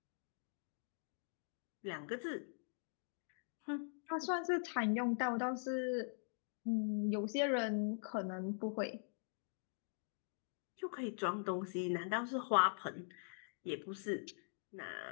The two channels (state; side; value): silent; right; digital silence